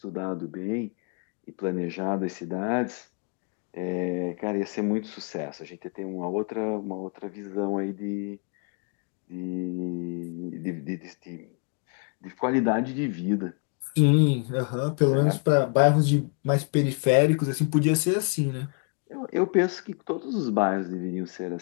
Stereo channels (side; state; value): right; quieter; 37.8 dB